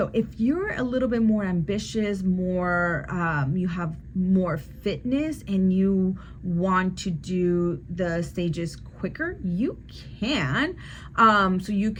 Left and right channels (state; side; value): identical; both; correlation 1.00